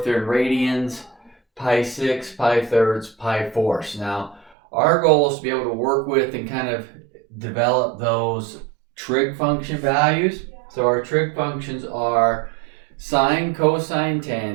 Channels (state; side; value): drops out; left; at 4.5 s